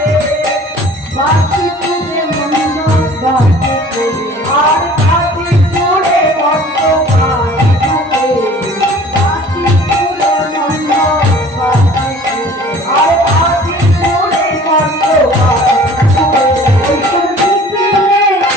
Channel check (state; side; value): normal; both; correlation 0.48